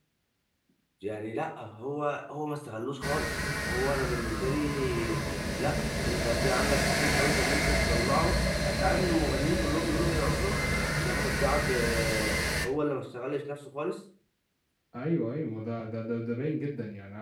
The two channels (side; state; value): both; identical; correlation 1.00